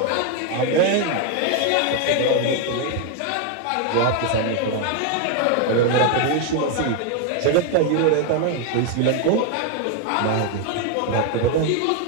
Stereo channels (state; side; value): different; both; correlation 0.01